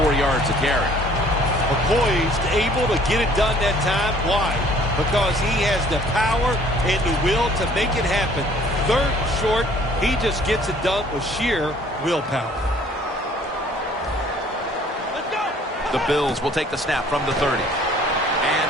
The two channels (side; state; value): both; normal; correlation 0.56